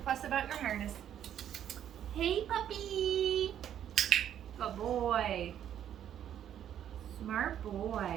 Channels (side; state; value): left; quieter; 10.2 dB